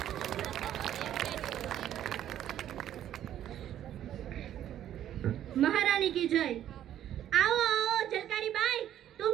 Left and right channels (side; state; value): left; quieter; 11.3 dB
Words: महारानी की जय। आओ आओ झलकारी बाई,